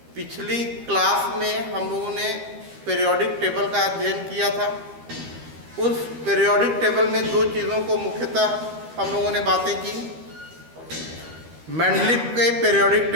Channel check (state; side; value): late; left; 13 ms